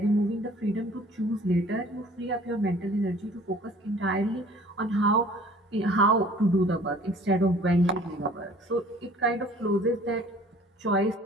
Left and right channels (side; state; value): both; normal; correlation 0.51